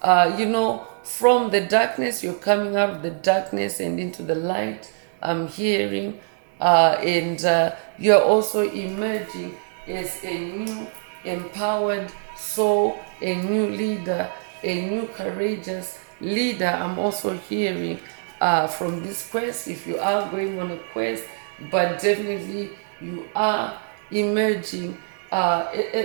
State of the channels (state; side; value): silent; left; 58 dB below the other